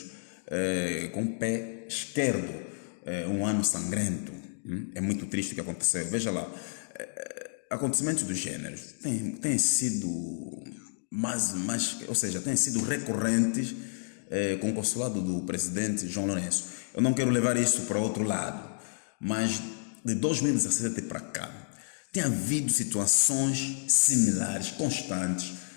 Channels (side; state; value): right; silent; digital silence